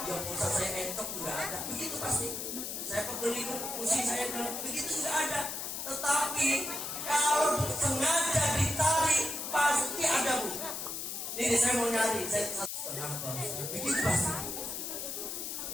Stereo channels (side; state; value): left; noise; hiss, 5 dB below the sound